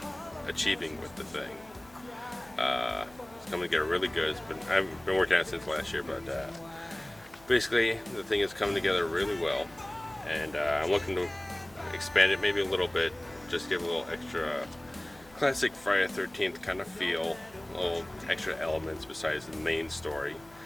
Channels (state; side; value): noise; left; hum, 25 dB below the sound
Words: achieving with the thing. It's coming together really good. I've been working on it since last year, but basically the thing is coming together really well, and I'm looking to expand it maybe a little bit, just give a little extra classic Friday the 13th kind of feel, little extra elements besides the main story.